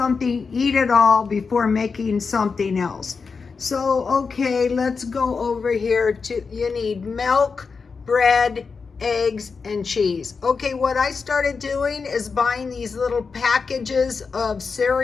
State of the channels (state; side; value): quieter; right; 5.0 dB